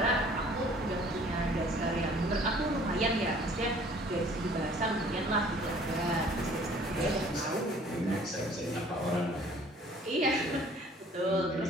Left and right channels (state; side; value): normal; both; correlation 0.54